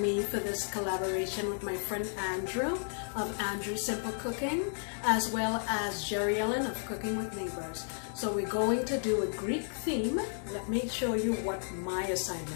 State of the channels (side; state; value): right; silent; 56 dB below the other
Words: me for this collaboration with my friend Andrew of Andrew's Simple Cooking, as well as Jerry Ellen of Cooking with Neighbors. So we're going to do a Greek theme. Let me show you what my